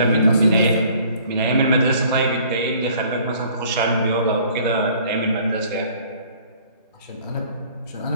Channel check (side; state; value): both; inverted; correlation -0.56